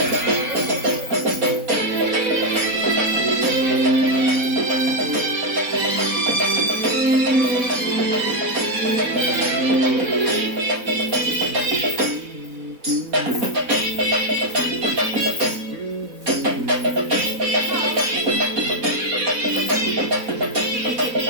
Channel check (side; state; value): left; late; 4.0 ms